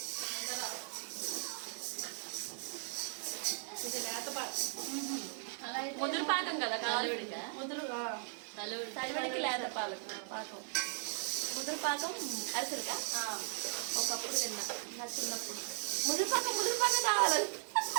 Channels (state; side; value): silent; left; 53 dB below the other